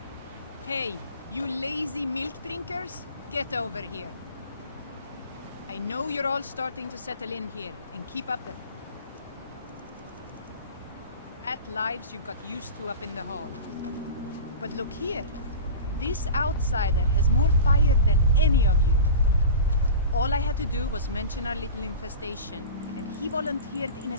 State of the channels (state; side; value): inverted; both; correlation -0.33